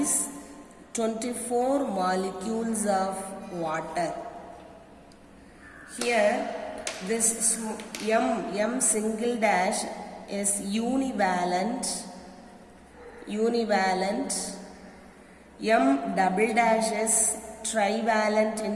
24 molecules of water. Here this M single dash is univalent, M double dash is trivalent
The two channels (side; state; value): both; identical; correlation 1.00